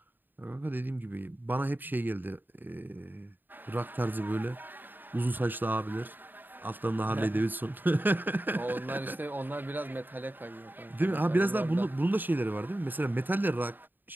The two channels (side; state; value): left; late; 0.091 ms